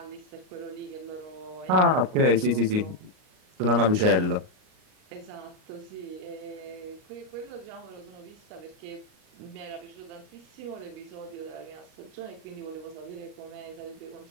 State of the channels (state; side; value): late; left; 38 ms